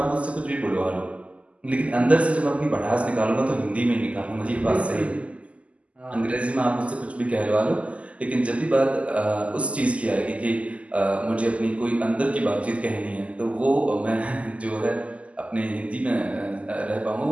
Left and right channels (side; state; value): left; late; 0.063 ms